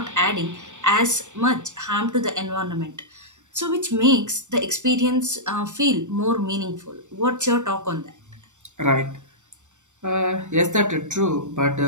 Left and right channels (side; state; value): left; late; 0.85 ms